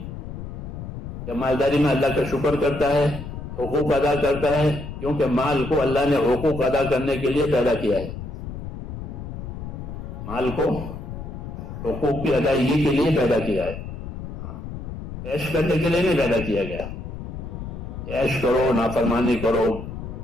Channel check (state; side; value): noise; left; rumble, 8 dB below the sound